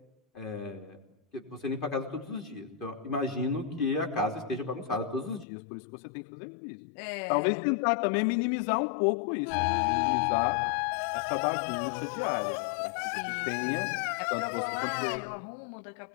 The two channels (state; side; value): drops out; right; at 5.5 s